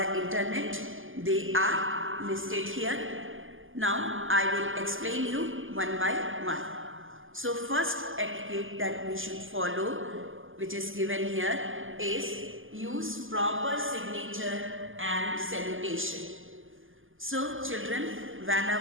internet? They are listed here. Now, I will explain you one by one. So, first etiquette that we should follow, which is given here, is use proper signature and salutation. So, children,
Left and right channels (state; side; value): late; left; 0.58 ms